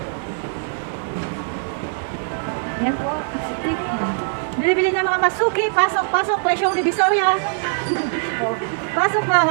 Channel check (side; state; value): left; silent; 65 dB below the other